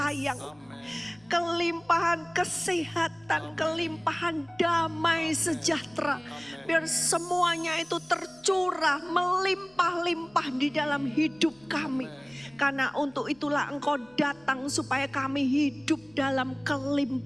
kelimpahan kesehatan, kelimpahan damai sejahtera. Biar semuanya itu tercurah, melimpah-limpah di dalam hidup kami. Karena untuk itulah Engkau datang supaya kami hidup dalam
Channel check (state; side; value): noise; left; hum, 30 dB below the sound